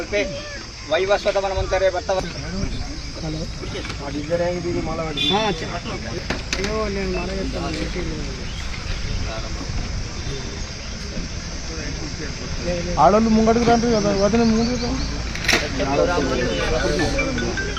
वैवस्वत मनमंतरे वर्तव ఆడోళ్ళు ముంగడికి రండి కదా వదిన ముందు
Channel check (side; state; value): both; identical; correlation 1.00